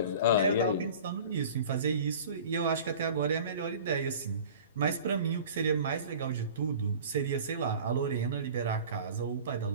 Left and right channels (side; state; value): both; inverted; correlation -0.42